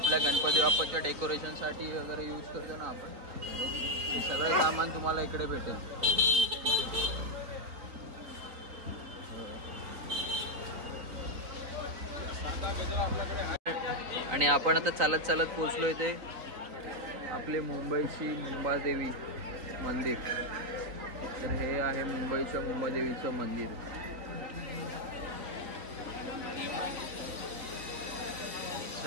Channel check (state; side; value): late; left; 4.1 ms